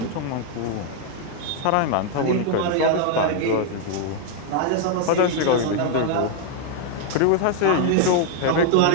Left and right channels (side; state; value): both; different; correlation 0.00